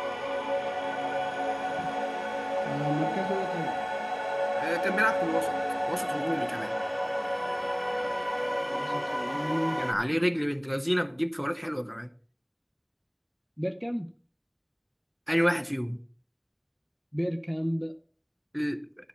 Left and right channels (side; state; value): both; identical; correlation 1.00